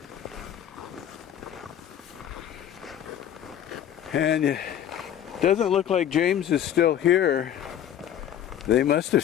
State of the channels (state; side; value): quieter; right; 10.2 dB